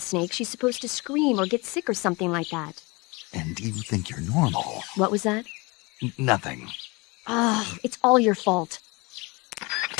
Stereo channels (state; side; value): quieter; right; 26.3 dB